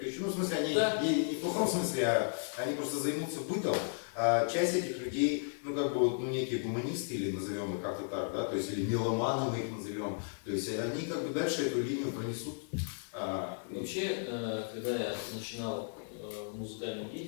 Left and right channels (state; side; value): silent; right; 55 dB below the other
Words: еще. Ну, в смысле, они не в плохом смысле, а они просто займутся бытом. А часть этих людей, ну, как бы вот, ну, некие гуманисты, или назовем их как-то так, да, то есть, или меломаны мы их назовем. То есть они как бы дальше эту линию пронесут. Вообще, когда я начинал музыкальную